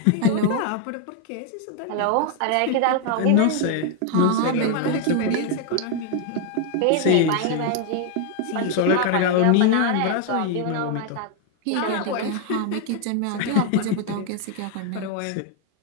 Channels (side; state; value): both; different; correlation 0.01